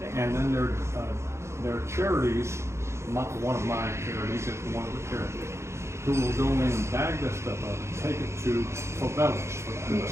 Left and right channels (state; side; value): late; left; 0.13 ms